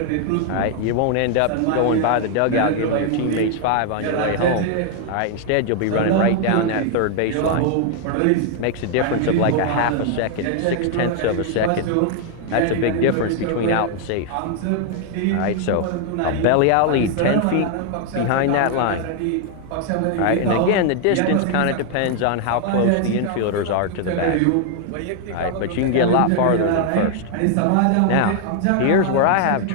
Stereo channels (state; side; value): different; both; correlation 0.00